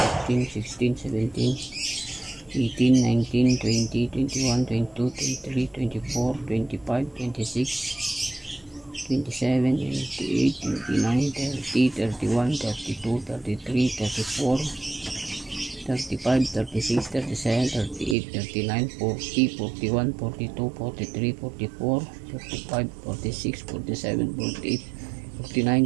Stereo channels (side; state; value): left; drops out; at 18.2 s